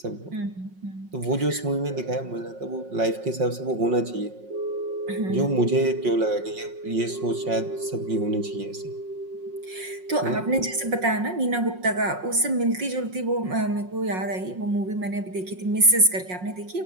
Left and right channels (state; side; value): late; left; 5.5 ms